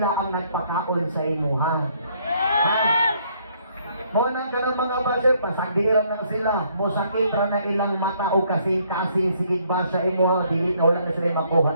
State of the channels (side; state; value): both; inverted; correlation -0.67